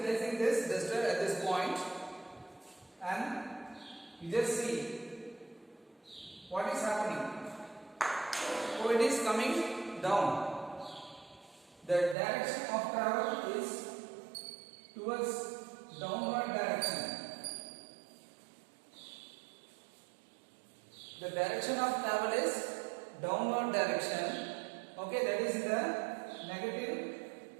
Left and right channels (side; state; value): left; drops out; at 12.2 s